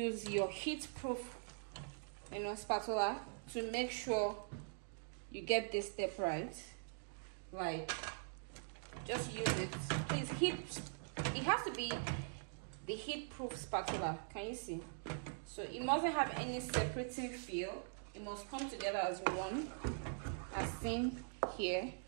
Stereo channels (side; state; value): left; silent; digital silence